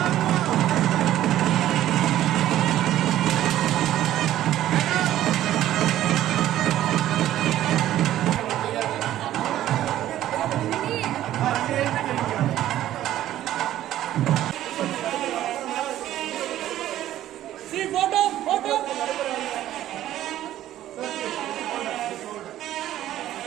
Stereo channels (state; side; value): quieter; left; 13.1 dB